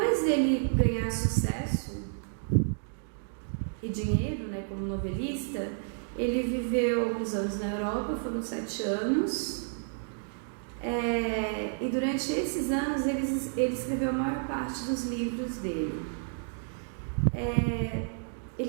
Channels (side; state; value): left; silent; digital silence